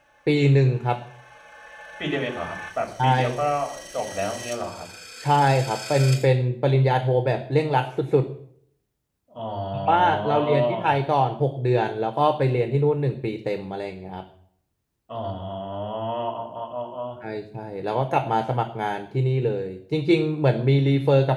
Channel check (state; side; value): identical; both; correlation 1.00